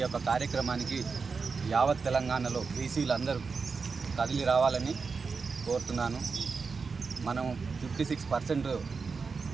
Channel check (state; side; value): quieter; left; 4.9 dB